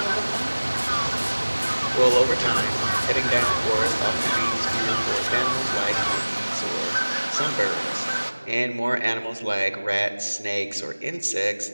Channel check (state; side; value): inverted; both; correlation -1.00